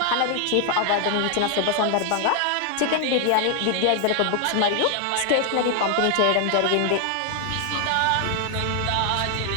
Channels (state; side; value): different; both; correlation 0.00